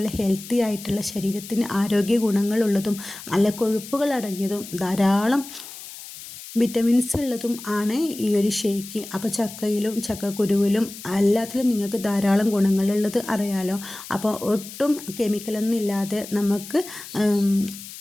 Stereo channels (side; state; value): left; noise; hiss, 14 dB below the sound